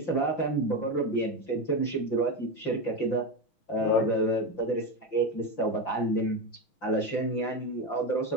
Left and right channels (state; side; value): late; right; 5.9 ms